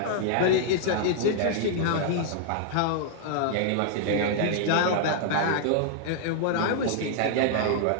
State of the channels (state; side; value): different; both; correlation -0.01